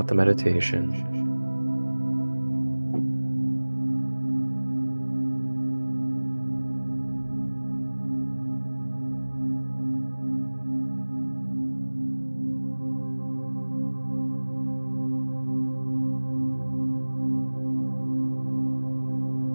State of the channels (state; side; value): inverted; both; correlation -1.00